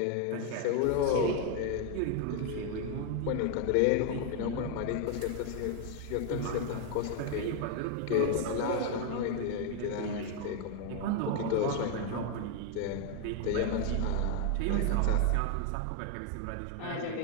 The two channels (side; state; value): both; different; correlation 0.01